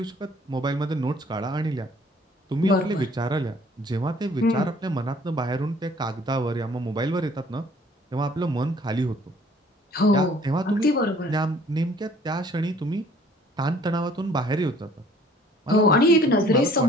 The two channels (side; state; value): both; normal; correlation 0.56